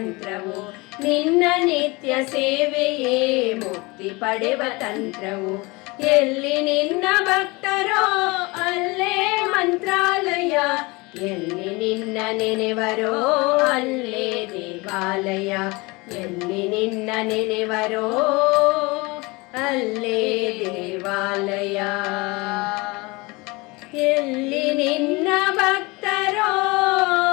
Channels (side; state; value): right; quieter; 24.8 dB